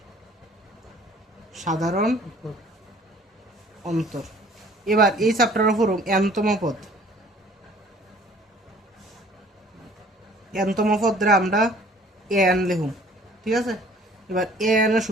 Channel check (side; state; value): both; normal; correlation 0.53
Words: সাধারণ অন্তর। এবার এই চ্যাপ্টারের উপর এনতম পদ দ্বারা আমরা এন লিখুন, ঠিক আছে। এবার এ এন এর